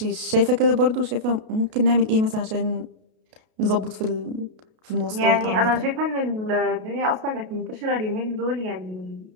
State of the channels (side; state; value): left; late; 32 ms